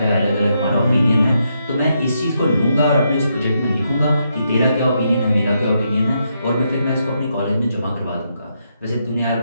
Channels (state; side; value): inverted; both; correlation -0.80